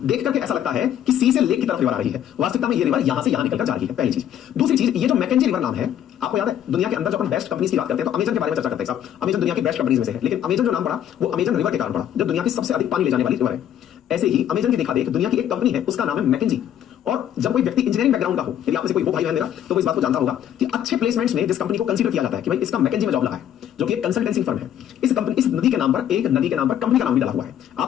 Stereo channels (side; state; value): right; quieter; 10.4 dB